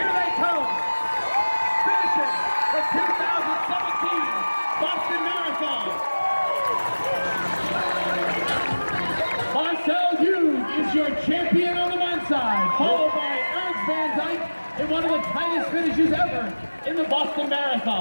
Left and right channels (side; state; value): both; inverted; correlation -1.00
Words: they come. Finishing the 2017 Boston Marathon. Marcel Hughes is your champion on the men's side, followed by Ernst Van Dyke in one of the tightest finishes ever in the Boston